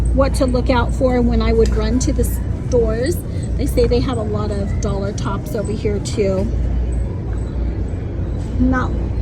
what to look out for when I would run to the stores. They say they have a lot of dollar tops over here too. Not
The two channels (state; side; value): identical; both; correlation 1.00